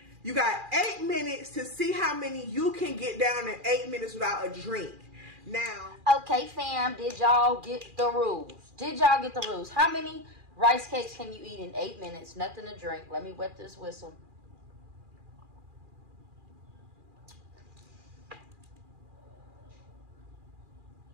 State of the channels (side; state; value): left; late; 2.4 ms